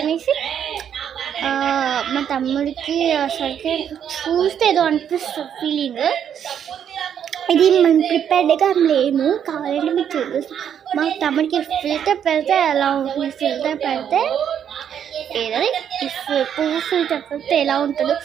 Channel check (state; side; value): quieter; left; 8.8 dB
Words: మా తమ్ముడికి అసలుకి చూస్తే ఏదో అనిపిస్తుంది ఫీలింగ్ ఇది మనం ప్రిపేర్డ్గా లేము కావాలంటే మీకు చూపిస్తాం మా తమ్ముడికి ఫిల్టర్ పెడితే ఎలా ఉంటుంది ఫిల్టర్ పెడితే ఏదది పువ్వు ఫిల్టర్ పెడితే ఎలా ఉంటుందో